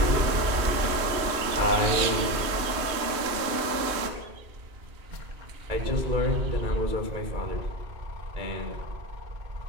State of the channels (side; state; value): left; late; 3.0 ms